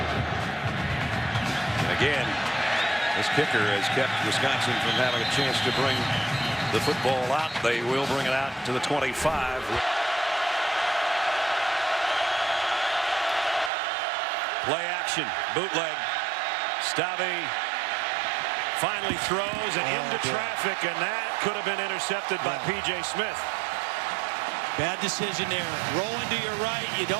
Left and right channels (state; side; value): drops out; left; at 13.7 s